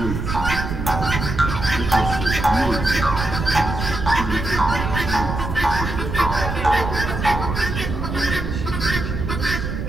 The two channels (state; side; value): noise; right; rumble, 4 dB below the sound